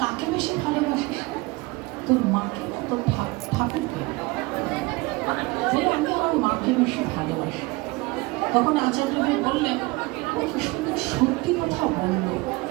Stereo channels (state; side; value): quieter; left; 23.7 dB